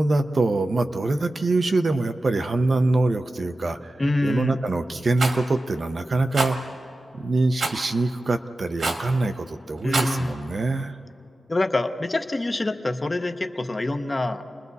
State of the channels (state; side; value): normal; both; correlation 0.94